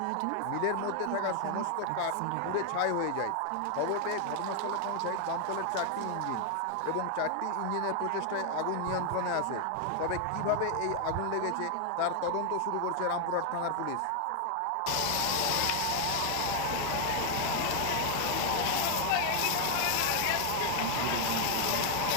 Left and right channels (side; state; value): both; different; correlation 0.00